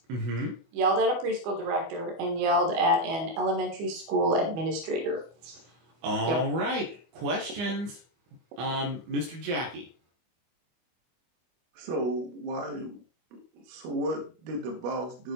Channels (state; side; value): late; left; 24 ms